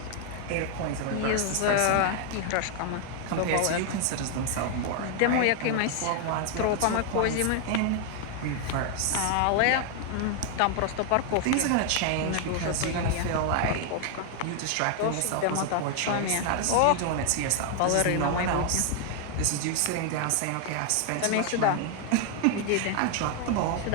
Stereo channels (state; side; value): different; both; correlation 0.00